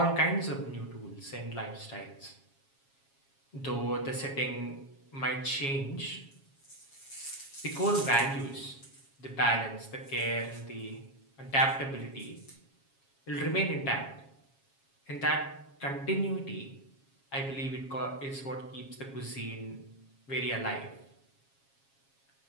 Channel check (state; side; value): late; right; 7.3 ms